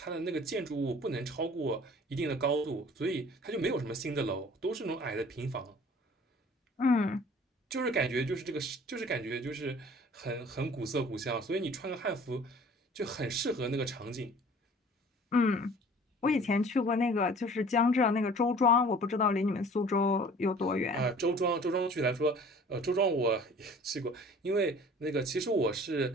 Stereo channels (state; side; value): normal; both; correlation 0.49